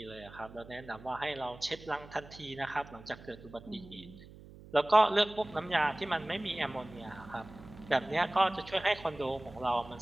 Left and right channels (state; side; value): noise; right; hum, 18 dB below the sound